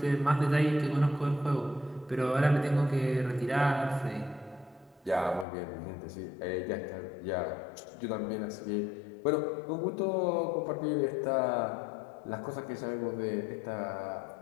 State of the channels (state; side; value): drops out; right; at 5.5 s